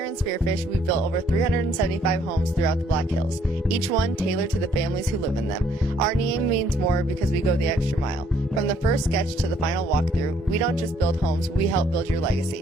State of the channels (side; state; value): both; normal; correlation 0.66